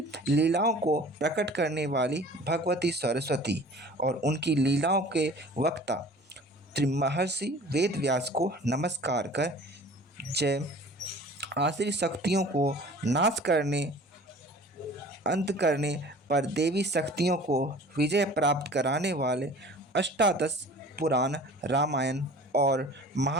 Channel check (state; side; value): normal; both; correlation 0.45